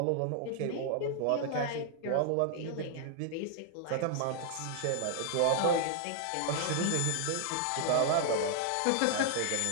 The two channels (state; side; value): different; both; correlation 0.00